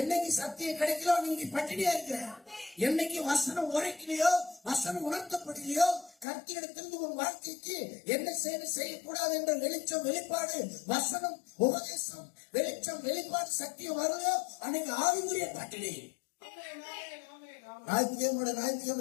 சத்தியம் கிடைக்கலோ நீங்க பட்டினியா இருக்கிற, என்னைக்கு வசனம் உரைக்கலையோ வசனம் உணர்த்தப்படலையோ கர்த்தரிடத்திலிருந்து உன் வாழ்க்கைக்கு என்ன செய்யக்கூடாது என்ற வெளிச்சம் வெளிப்பாடு வசனம் உபதேசம் வெளிச்சம் வெளிப்பாடு சத்தியம் வருதோ அன்னைக்கு ஆவிக்குரிய பட்டினி.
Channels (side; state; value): right; drops out; at 6.2 s